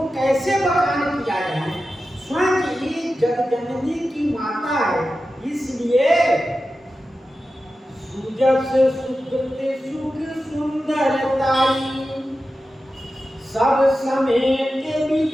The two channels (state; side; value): normal; both; correlation 0.92